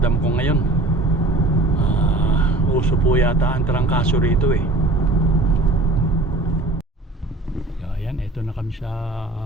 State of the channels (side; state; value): left; quieter; 3.0 dB